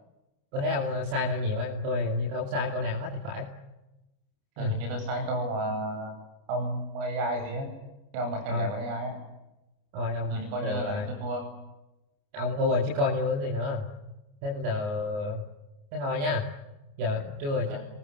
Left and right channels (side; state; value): left; late; 29 ms